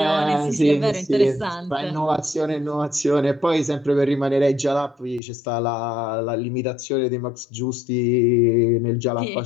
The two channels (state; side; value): drops out; right; at 5.2 s